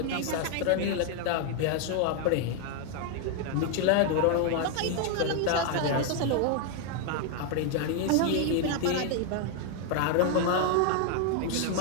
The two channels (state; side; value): different; both; correlation 0.00